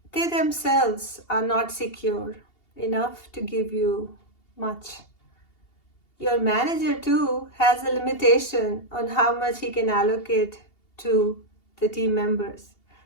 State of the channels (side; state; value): right; late; 2.8 ms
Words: They themselves are not secure enough to give you much. Your manager too has a limitation on how much he can allocate to the team members